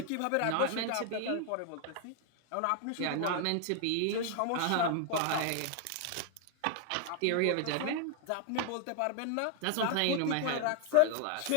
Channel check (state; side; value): different; both; correlation 0.00